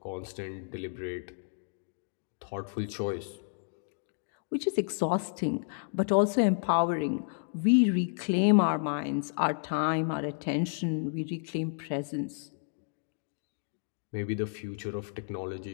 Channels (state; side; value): silent; right; digital silence